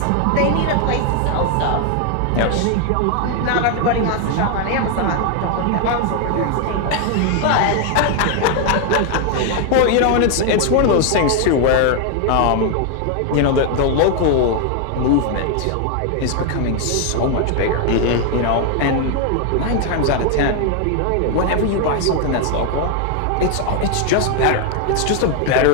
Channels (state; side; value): different; both; correlation 0.01